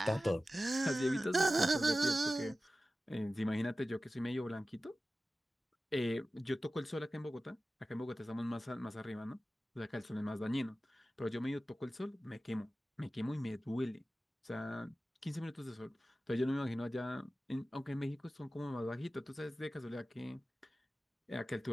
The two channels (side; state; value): both; normal; correlation 0.95